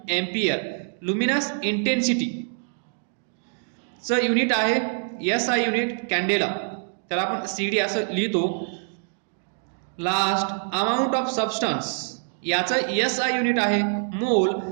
एम्पियर, लुमिनस इंटेन्सिटी चं युनिट आहे SI युनिट कॅन्डेला, त्याला आपण CD असं लिहितो. लास्ट, अमाउंट ऑफ सबस्टन्स, याचं SI युनिट आहे मोल,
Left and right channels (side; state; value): left; silent; digital silence